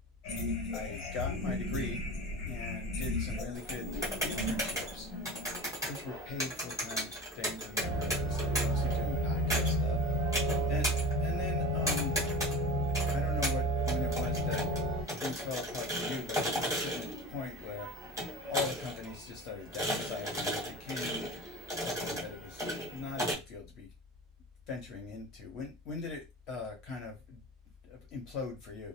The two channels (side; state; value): both; normal; correlation 0.34